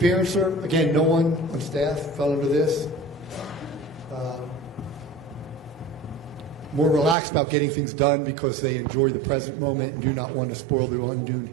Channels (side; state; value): left; drops out; at 7.2 s